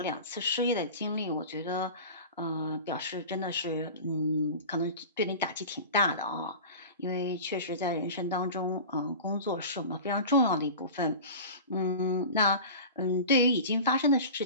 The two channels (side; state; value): both; inverted; correlation -0.34